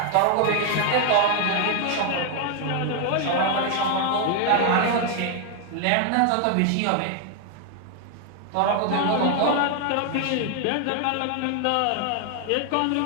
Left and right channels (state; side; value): different; both; correlation 0.00